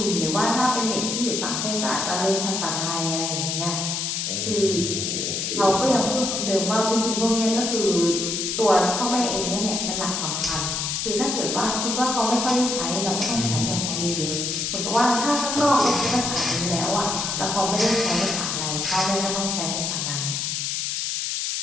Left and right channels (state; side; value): noise; left; hiss, 1 dB below the sound